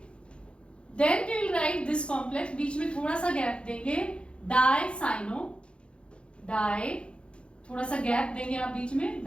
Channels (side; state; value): right; late; 0.057 ms